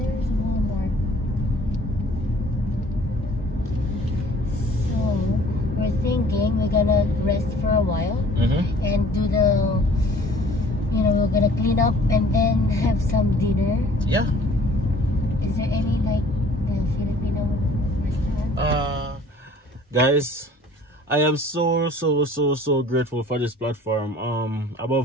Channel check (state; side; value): normal; both; correlation 0.52